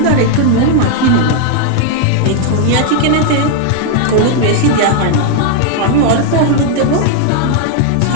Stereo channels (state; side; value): different; both; correlation 0.00